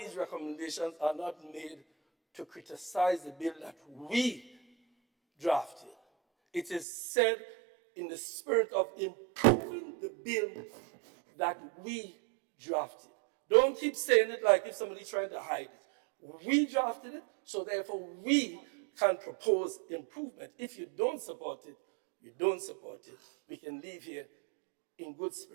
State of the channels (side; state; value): left; drops out; at 6.9 s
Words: recommendations are not made to criticize the bill that we drafted. It is said in the spirit of improving the bill that we drafted. Don't keep saying it like if somebody's trying to hide it. We drafted it, so therefore we can propose improvement. If you don't support it, you don't support it. We can leave here in good